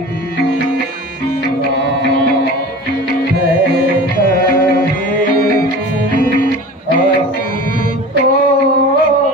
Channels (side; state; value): both; normal; correlation 0.37